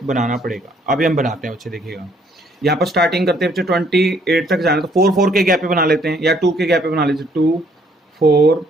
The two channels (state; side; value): normal; both; correlation 0.65